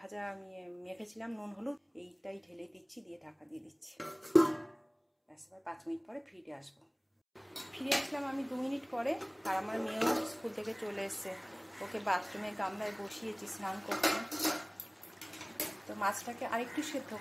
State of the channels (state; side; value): identical; both; correlation 1.00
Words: আমি মেখেছিলাম নুন হলুদ, এইটাই ঢেলে দিচ্ছি, দিয়ে ঢাকা দিয়ে দিচ্ছি। ব্যাস, এবার 5 মিনিট পরে ফিরে আসবো। ফিরে আসলাম আমি 2 মিনিট পরে, আর আমার মেয়েও স্কুল থেকে চলে এসছে। ওকে বাথরুমে গামলায় বসিয়েছি স্নান করতে। তো মাছটাকে আরেকটু সেদ্ধ